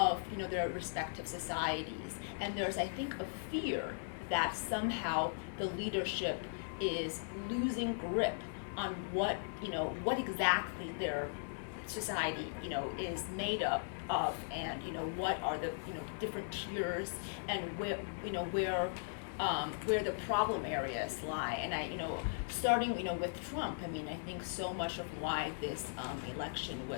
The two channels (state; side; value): silent; right; 52 dB below the other